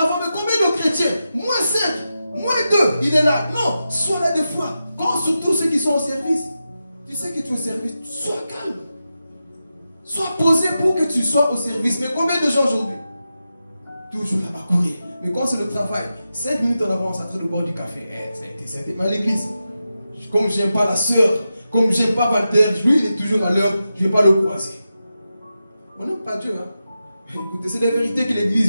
Mais combien de chrétiens? Moins 5, moins 2, il est là. Non, sois là des fois. Quand surtout ceux qui sont au service, tu sais que tu es au service, sois calme. Sois posé pour que tu sois au service. Mais combien de gens aujourd'hui? Toujours là-bas courir. Mais quand c'est le travail, 5 minutes en avance, à train de boire du café. Mais à l'église, comme j'aime pas la sœur, comme j'aime pas Walter, lui il est toujours à l'heure, je ne vais pas le croiser. On n'aime pas Dieu. Hein? Écoutez, c'est la vérité que l'église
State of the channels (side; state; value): both; inverted; correlation -0.91